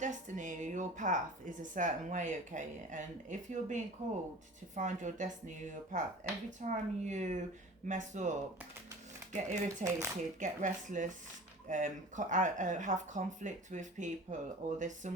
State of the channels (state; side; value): normal; both; correlation 0.40